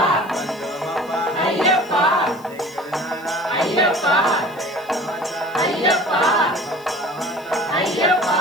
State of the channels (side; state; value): left; noise; hiss, 24 dB below the sound